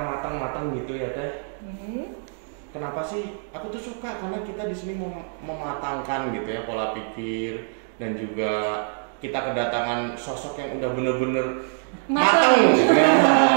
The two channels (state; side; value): silent; left; 62 dB below the other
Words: gitu ya Teh. Kenapa sih? Aku tuh suka karena kita di sini mematangkan gitu ya pola pikir dan juga kita kedatangan sosok yang udah bener-bener matang